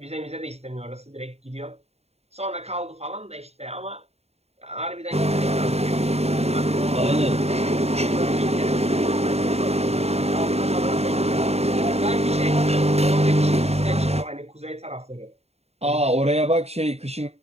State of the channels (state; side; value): late; left; 0.30 ms